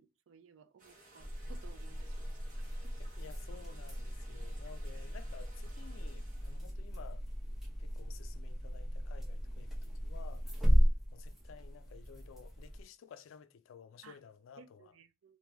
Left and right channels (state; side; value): normal; both; correlation 0.98